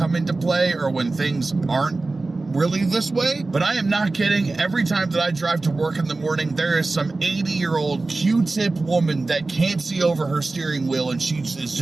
into play or when things aren't really this way, but I am not kidding. Every time that I drive to work in the morning, there is some 80-year-old Q-tip woman that can't see over her steering wheel, and she is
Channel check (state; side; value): quieter; left; 3.4 dB